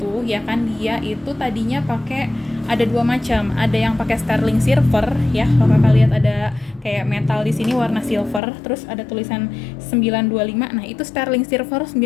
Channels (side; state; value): right; drops out; at 8.4 s